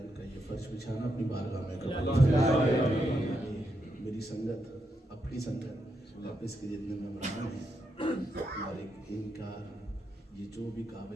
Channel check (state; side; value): normal; both; correlation 0.82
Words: ان کا یہ فرش بچھانا اپنی بارگاہ میں قبول فرمائے۔ میری سنگت اپنی سنگت آپ اس کے جتنے ممبران ہیں اور ان کا یہ جو بھی